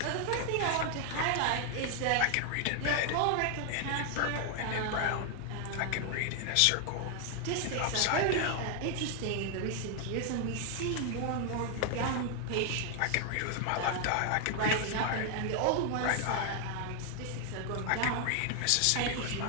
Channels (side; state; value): both; different; correlation 0.00